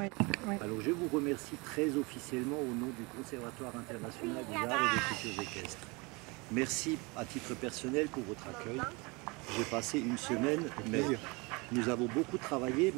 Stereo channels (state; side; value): quieter; left; 27.3 dB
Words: oui. Alors je vous remercie très officiellement au nom du Conservatoire international des arts et des cultures équestres. Merci à titre personnel pour votre accueil. J'ai passé une semaine, mais nous avons beaucoup travaillé,